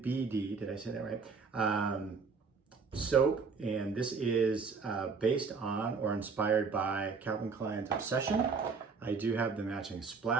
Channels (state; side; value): quieter; left; 5.0 dB